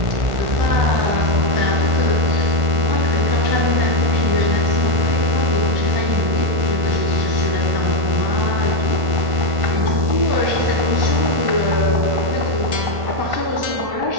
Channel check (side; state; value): left; late; 1.5 ms